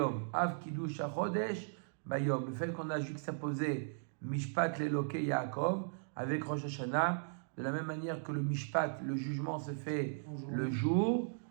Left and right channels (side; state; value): left; silent; digital silence